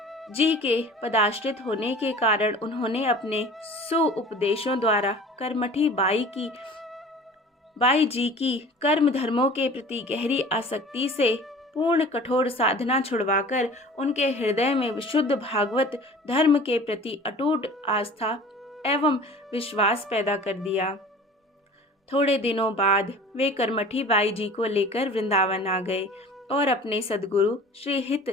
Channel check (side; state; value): both; normal; correlation 0.43